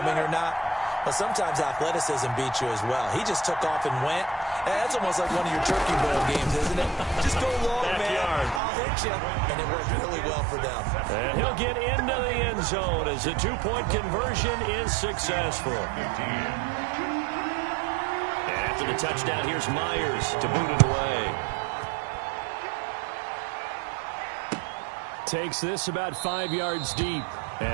or not. Well, sometimes athleticism beats you as well. He just took off and went. And that's almost like one of your Turkey Bowl games, isn't it? Just go long, man. I'll hit you. And it worked really well for them. And he'll get into the end zone as a 2-point conversion is successful. After the touchdown, here's Myers to boot it away. Takes this about 5 yards deep.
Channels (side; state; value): left; drops out; at 8.6 s